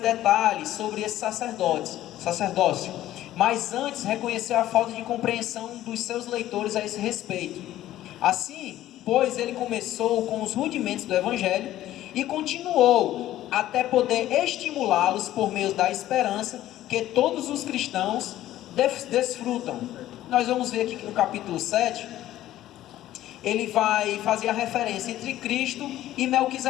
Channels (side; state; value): right; quieter; 13.8 dB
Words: sobre esse sacerdócio, mas antes reconheceu a falta de compreensão dos seus leitores a esse respeito. Assim, pois ele começou com os rudimentos do Evangelho e continuou até poder estimulá-los por meio da esperança que todos os cristãos desfrutam. Nós vamos ver aqui que no capítulo 7, ele vai fazer a referência entre Cristo e